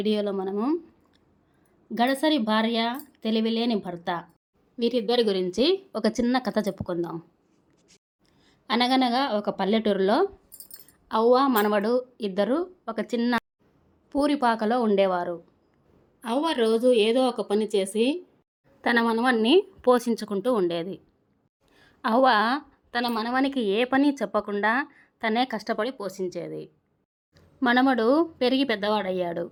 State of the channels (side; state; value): both; identical; correlation 1.00